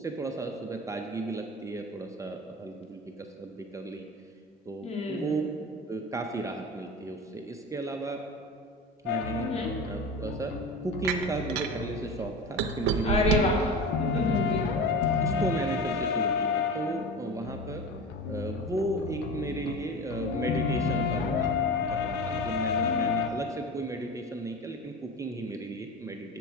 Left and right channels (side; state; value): both; normal; correlation 0.30